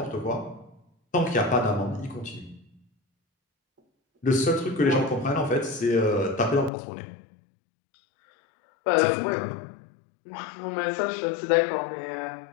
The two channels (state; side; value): drops out; right; at 6.7 s